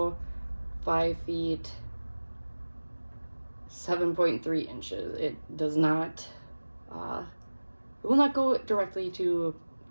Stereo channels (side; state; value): both; inverted; correlation -1.00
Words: 5 feet 7.3 inches. It does not, it will not go directly to